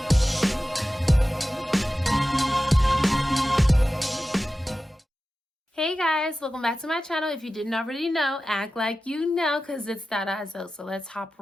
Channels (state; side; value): normal; both; correlation 0.94